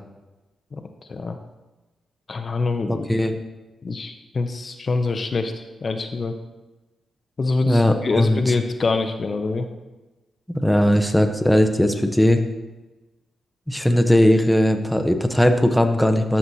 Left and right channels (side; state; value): both; normal; correlation 0.95